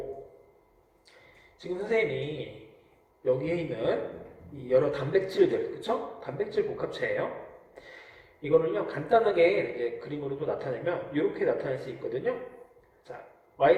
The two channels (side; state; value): both; identical; correlation 1.00